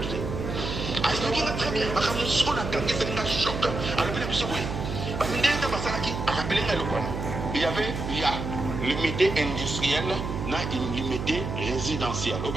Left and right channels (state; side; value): noise; right; hum, 5 dB below the sound